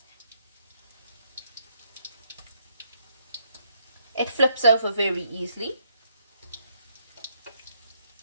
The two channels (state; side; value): inverted; both; correlation -0.70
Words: It flips over very easily.